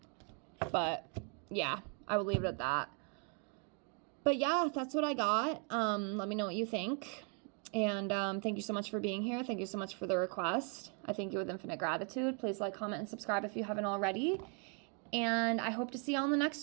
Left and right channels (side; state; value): left; quieter; 36.9 dB